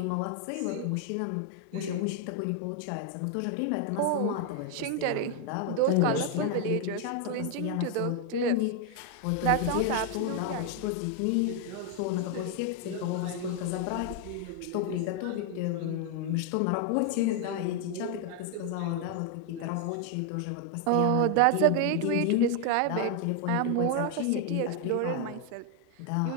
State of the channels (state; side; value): different; both; correlation 0.01